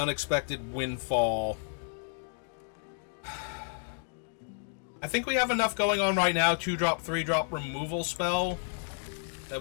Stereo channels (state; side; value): silent; right; 57 dB below the other